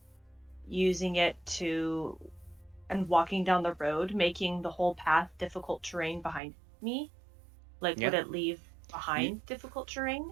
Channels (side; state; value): left; drops out; at 6.4 s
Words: using it to and walking down the road, making the whole path difficult terrain behind me? Like, would Yeah. it leave You, behind difficult terrain